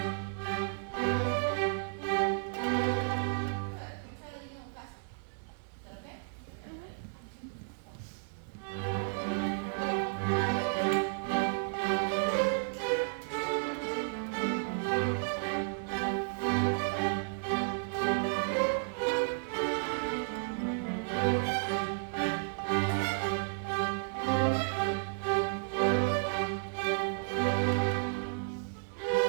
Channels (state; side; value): silent; left; digital silence